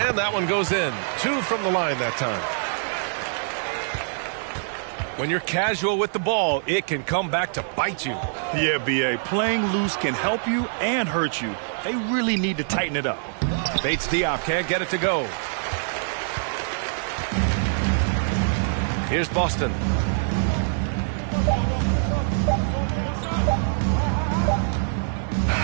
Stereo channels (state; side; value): silent; left; digital silence